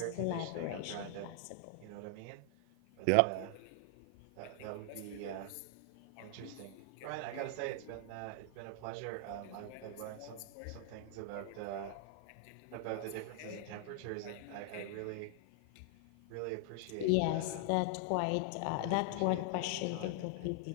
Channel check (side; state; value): both; different; correlation 0.00